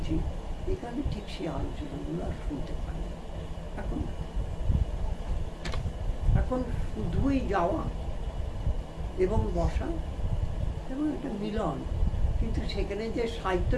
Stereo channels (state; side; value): identical; both; correlation 1.00